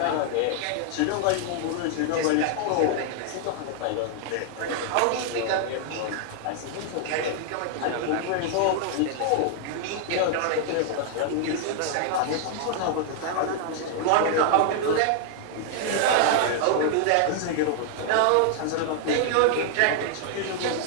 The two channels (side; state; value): both; different; correlation 0.00